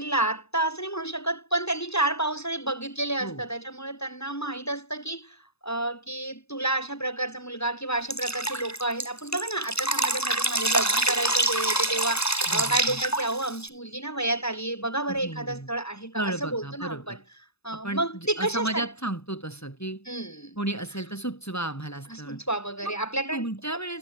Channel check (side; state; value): right; late; 0.79 ms